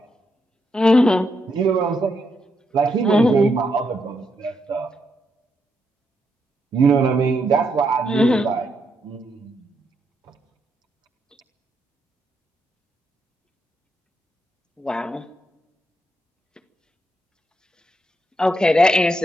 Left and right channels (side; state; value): both; normal; correlation 0.80